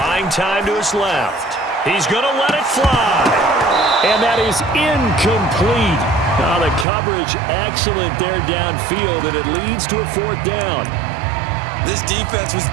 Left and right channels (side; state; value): left; drops out; at 6.9 s